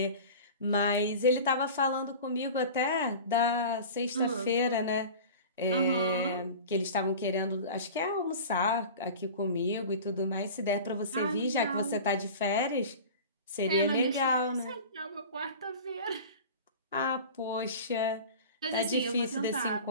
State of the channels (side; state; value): both; inverted; correlation -0.36